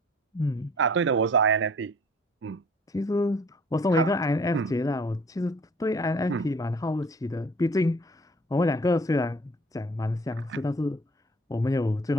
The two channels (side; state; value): both; normal; correlation 0.53